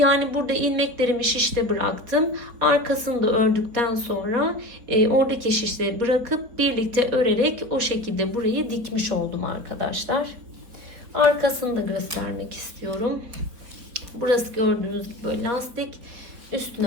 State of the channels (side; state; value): left; late; 4.5 ms